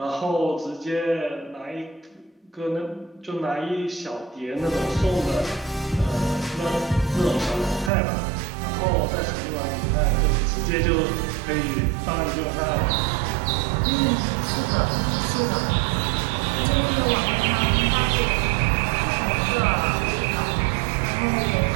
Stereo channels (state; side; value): drops out; left; at 7.9 s